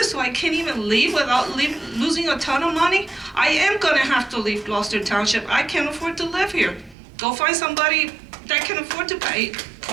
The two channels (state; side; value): drops out; left; at 7.0 s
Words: so I can't even leave without losing a ton of money. I am going to have to leave Gloucester Township. I can't afford to live here. Go find somebody that can afford to pay